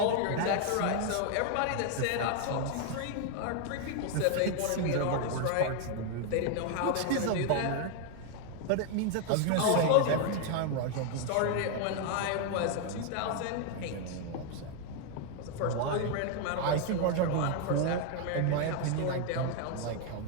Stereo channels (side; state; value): both; different; correlation 0.01